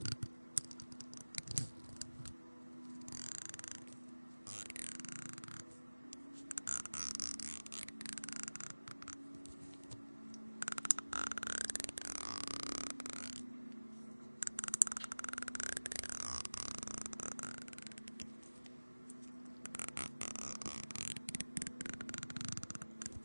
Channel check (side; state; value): both; inverted; correlation -1.00